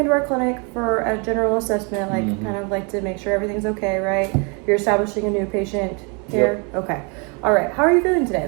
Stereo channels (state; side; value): quieter; left; 33.4 dB